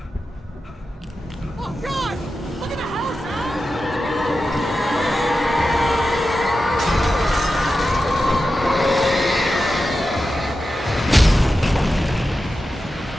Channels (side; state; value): both; normal; correlation 0.91